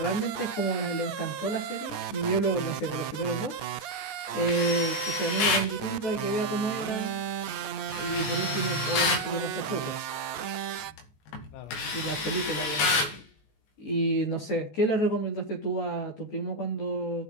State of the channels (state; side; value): late; right; 19 ms